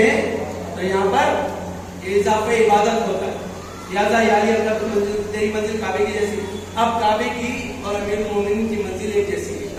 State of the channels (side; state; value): both; identical; correlation 1.00